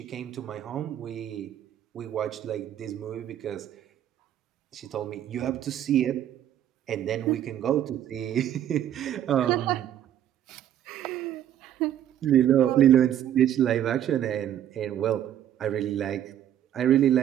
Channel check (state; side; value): quieter; left; 11.0 dB